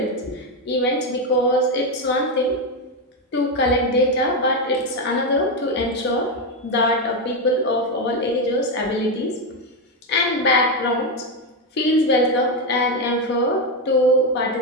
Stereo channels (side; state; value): both; normal; correlation 0.08